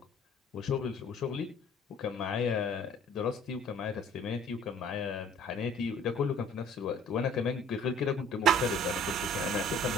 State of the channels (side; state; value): both; normal; correlation 0.52